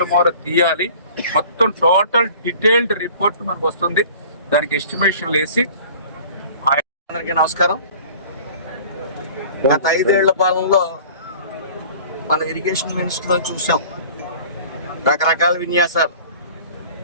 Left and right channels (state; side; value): inverted; both; correlation -0.46